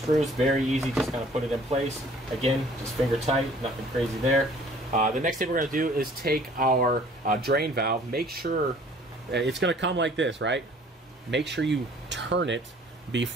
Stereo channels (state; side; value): normal; both; correlation 0.54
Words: very easy, just kind of put it in place. Again, just finger tight, nothing crazy there. The next thing we're going to do is take our drain valve. Make sure it's going to come like this, right? Make sure you turn it